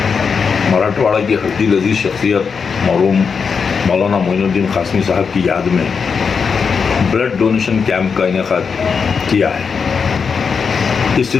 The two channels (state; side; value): quieter; right; 5.8 dB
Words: मराठवाड़ा की हड्डी लजीज शख्सियत मरहूम मौलाना मोइनुद्दीन कासमी साहब की याद में ब्लड डोनेशन कैंप का इनेकाद किया है। इस